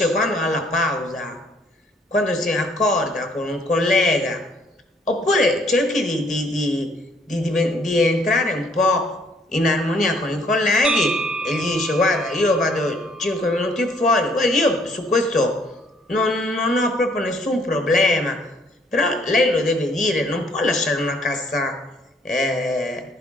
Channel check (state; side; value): normal; both; correlation 0.64